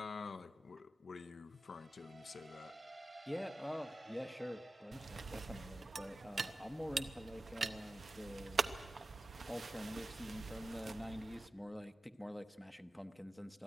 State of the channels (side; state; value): both; normal; correlation 0.94